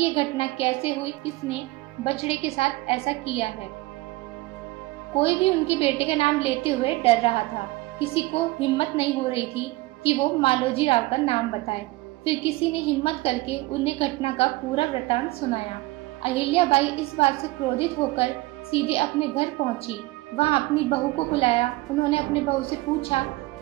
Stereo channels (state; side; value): quieter; left; 20.6 dB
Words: ये घटना कैसे हुई, किसने बछड़े के साथ ऐसा किया है। कोई भी उनके बेटे का नाम लेते हुए डर रहा था। किसी को हिम्मत नहीं हो रही थी कि वो मालोजी राव का नाम बताए। फिर किसी ने हिम्मत करके उन्हें घटना का पूरा वृतांत सुनाया। अहिल्याबाई इस बात से क्रोधित होकर सीधे अपने घर पहुंची। वहां अपनी बहू को बुलाया। उन्होंने अपने बहू से पूछा